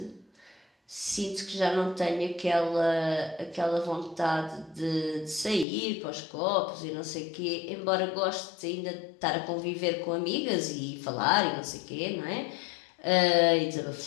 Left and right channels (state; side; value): drops out; right; at 5.7 s